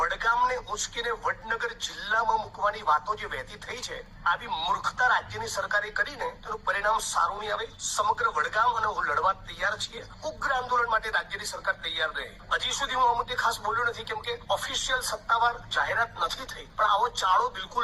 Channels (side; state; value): both; identical; correlation 1.00